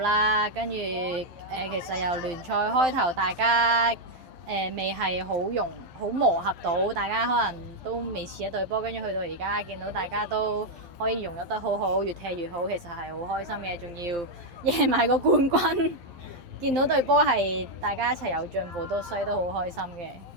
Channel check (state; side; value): late; left; 12 ms